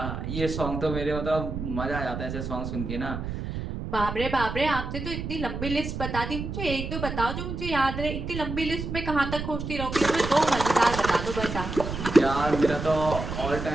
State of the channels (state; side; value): noise; right; rumble, 5 dB below the sound